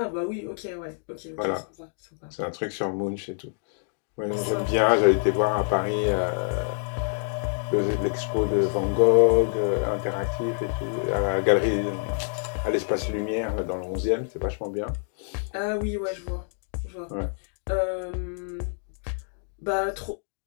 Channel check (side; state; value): right; silent; digital silence